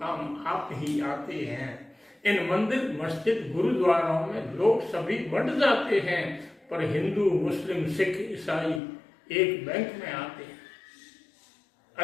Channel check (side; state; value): right; drops out; at 8.8 s